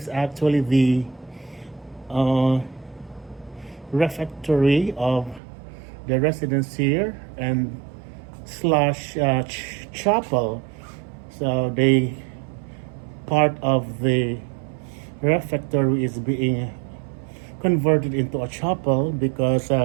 actually the refectory of the residents here and slash chapel. So they part of the refectory is being converted into a chapel because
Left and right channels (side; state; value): left; drops out; at 5.4 s